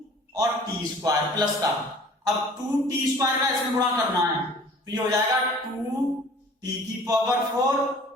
और t² प्लस का, अब 2t² का इसमें गुणा करना है तो ये हो जाएगा 2t⁴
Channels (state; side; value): normal; both; correlation 0.49